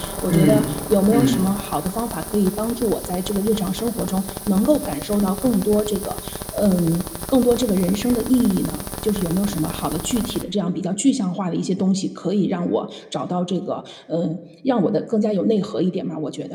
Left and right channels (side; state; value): both; identical; correlation 1.00